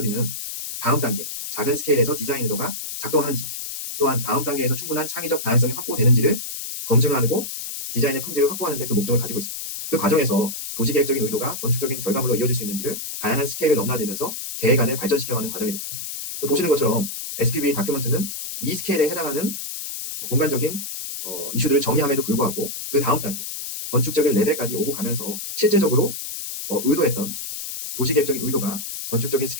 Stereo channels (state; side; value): noise; left; hiss, 7 dB below the sound